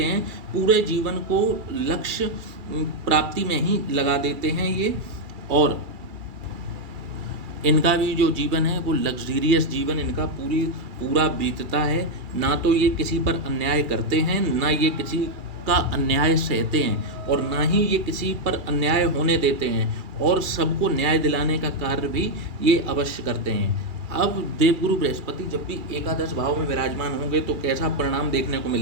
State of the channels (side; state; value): left; late; 2.3 ms